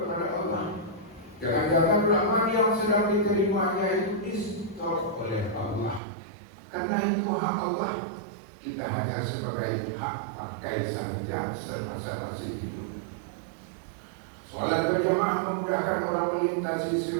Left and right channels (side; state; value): left; drops out; at 6.0 s